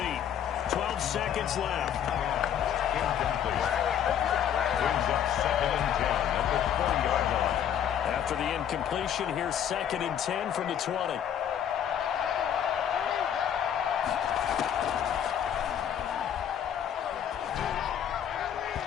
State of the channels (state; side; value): quieter; right; 9.4 dB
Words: 12 seconds left. Incomplete. Brings up 2nd and 10 at the 40-yard line. After the incompletion, here's 2nd and 10 from the 20.